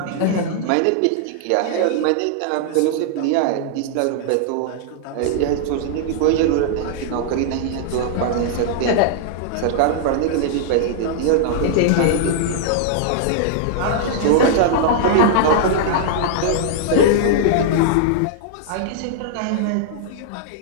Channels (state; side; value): different; both; correlation -0.01